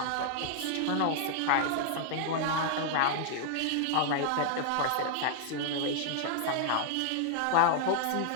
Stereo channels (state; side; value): different; both; correlation 0.00